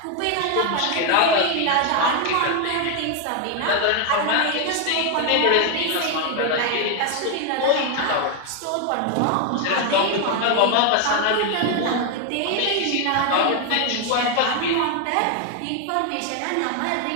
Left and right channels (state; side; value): different; both; correlation 0.01